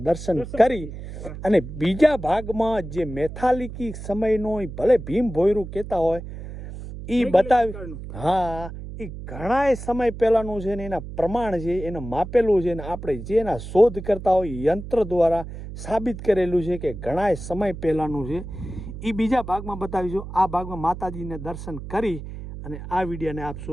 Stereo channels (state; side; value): noise; right; hum, 10 dB below the sound